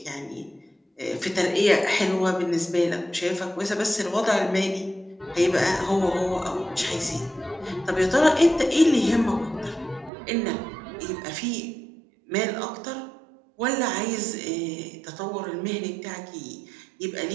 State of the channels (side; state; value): left; drops out; at 10.1 s